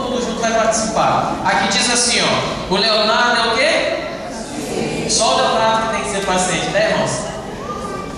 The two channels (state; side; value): identical; both; correlation 1.00